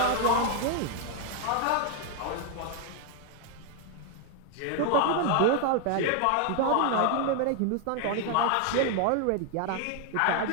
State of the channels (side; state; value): both; different; correlation 0.00